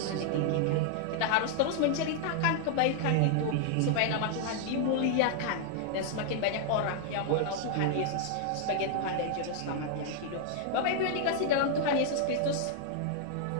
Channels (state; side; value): different; both; correlation -0.01